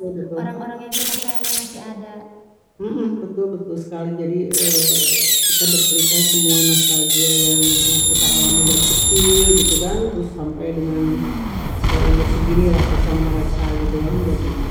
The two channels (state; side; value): identical; both; correlation 1.00